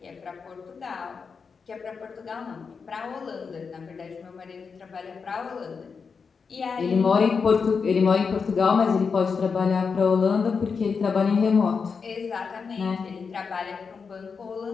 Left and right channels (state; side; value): quieter; right; 5.5 dB